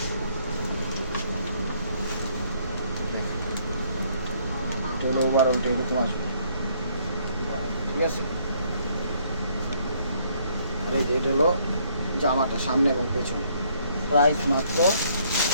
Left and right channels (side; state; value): both; inverted; correlation -0.66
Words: ওভারঅলটা এরকম আসবে, ঠিক আছে। এটা হলো জামাটা সামনে এবং পেছনে। প্রাইস মাত্র